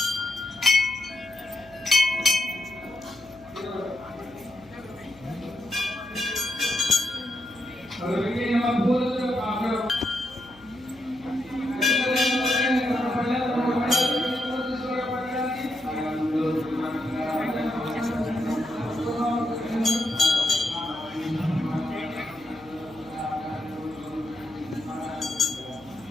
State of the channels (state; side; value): noise; left; hum, 25 dB below the sound